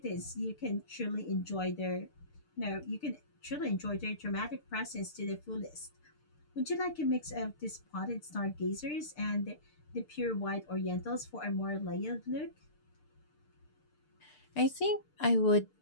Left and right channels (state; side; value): late; right; 6.7 ms